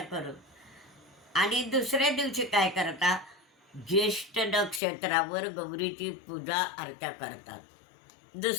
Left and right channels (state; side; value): drops out; right; at 4.8 s